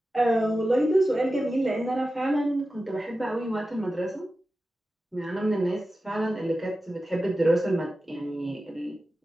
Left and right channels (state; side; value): normal; both; correlation 0.94